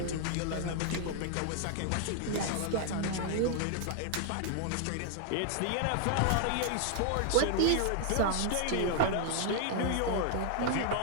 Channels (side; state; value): both; different; correlation 0.00